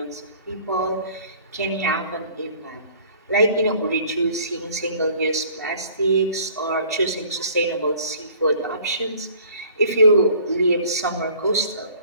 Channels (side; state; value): both; inverted; correlation -0.53